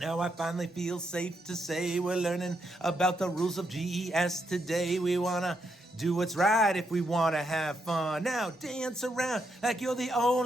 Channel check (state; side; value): normal; both; correlation 0.79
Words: I finally feel safe to say we're learning about the rules of GES today. We want to do what's right if we want to have fun. Now dance around like you're the